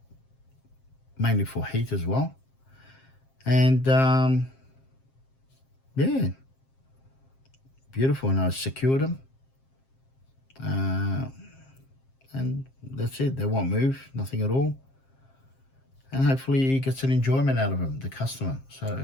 mainly for heat as well. And, yeah, beautiful. And I secured them. And that's it. They won't move, nothing at all. And hopefully he gets an enjoyment out of them, the customer.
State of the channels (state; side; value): late; right; 7.5 ms